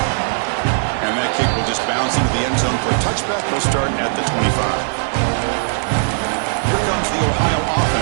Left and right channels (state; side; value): silent; left; digital silence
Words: And that kick will just bounce into the end zone for a touchback. They'll start at the 25. Here comes the Ohio